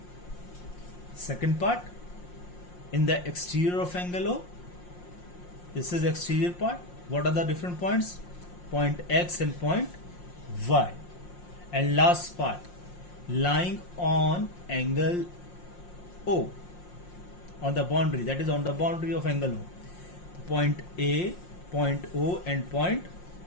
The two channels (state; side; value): late; right; 5.6 ms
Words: Second part, in the exterior of angle O. This is exterior part. What are the different points? Point X and point Y. And last part, lying on angle O, on the boundary, that is on the boundary of angle O. Point A, point O and point